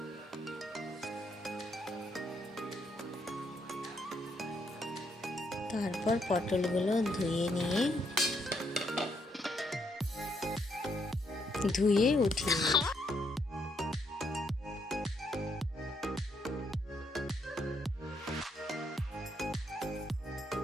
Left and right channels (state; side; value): normal; both; correlation 0.75